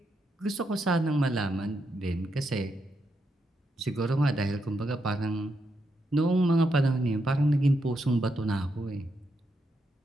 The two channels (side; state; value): both; normal; correlation 0.82